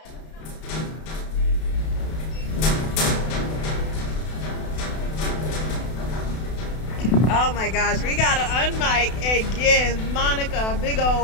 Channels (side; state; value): right; late; 32 ms